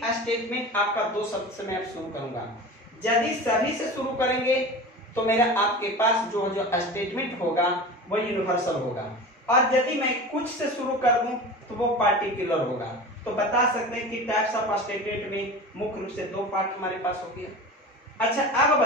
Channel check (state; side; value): normal; both; correlation 0.33